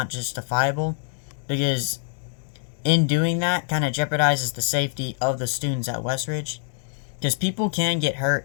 justifiable, because in doing that kind of jeopardizes the safety of the students at Westridge, because people can get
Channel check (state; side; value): silent; right; 62 dB below the other